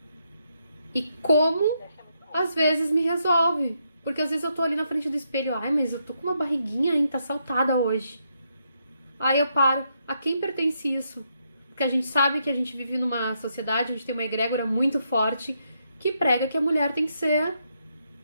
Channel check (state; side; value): inverted; both; correlation -0.78